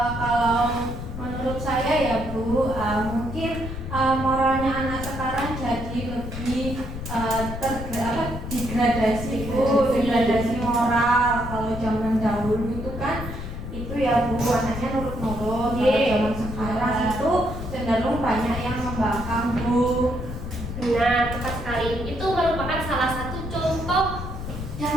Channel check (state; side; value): noise; left; rumble, 7 dB below the sound